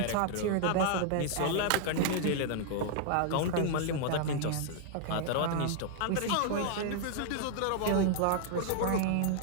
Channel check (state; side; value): different; both; correlation 0.00